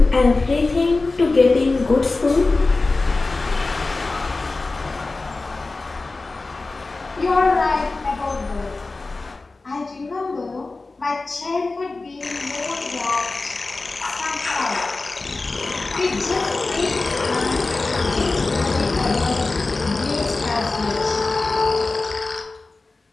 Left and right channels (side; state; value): right; quieter; 3.5 dB